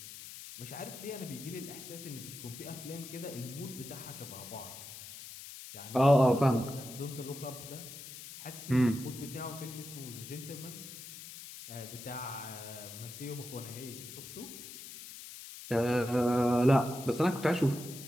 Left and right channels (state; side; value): noise; left; hiss, 12 dB below the sound